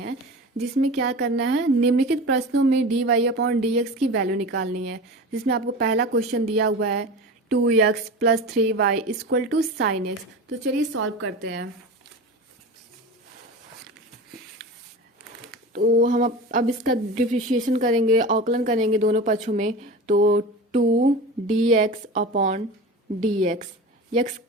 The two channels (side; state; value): both; normal; correlation 0.31